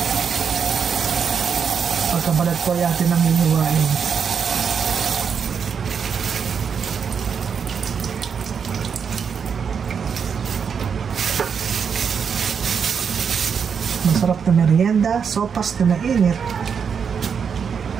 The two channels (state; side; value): quieter; left; 6.7 dB